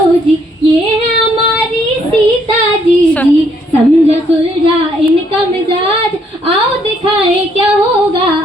जी, ये है हमारी सीता जी जी। समझा सुलझा इनका मिजाज, आओ दिखाए क्या होगा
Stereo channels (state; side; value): normal; both; correlation 0.70